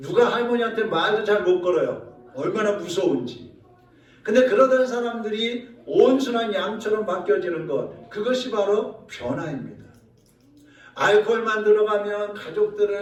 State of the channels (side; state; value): both; identical; correlation 1.00